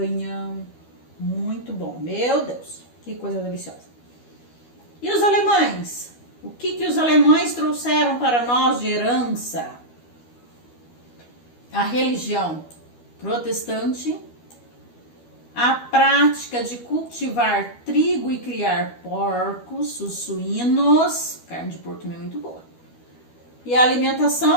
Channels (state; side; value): late; right; 12 ms